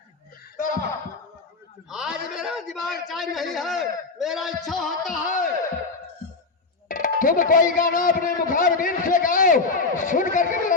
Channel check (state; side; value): quieter; right; 4.0 dB